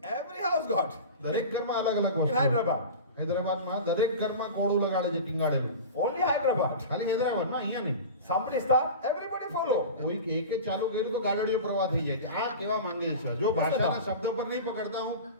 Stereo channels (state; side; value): inverted; both; correlation -0.32